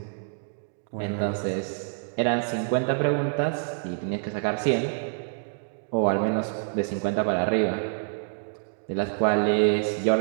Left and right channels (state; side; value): silent; left; digital silence